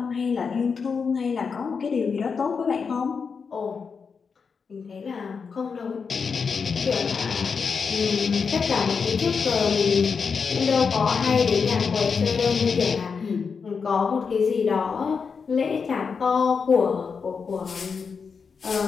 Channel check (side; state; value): right; quieter; 5.6 dB